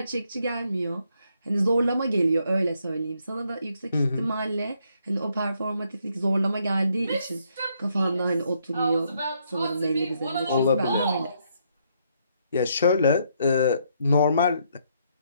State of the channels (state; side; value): inverted; both; correlation -0.73